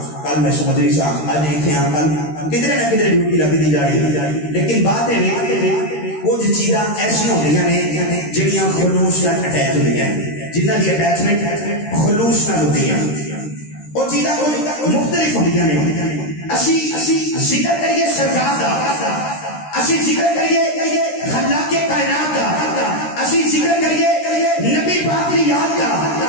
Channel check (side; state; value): right; late; 13 ms